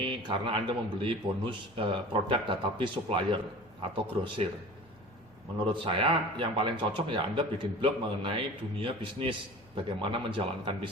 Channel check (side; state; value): both; normal; correlation 0.40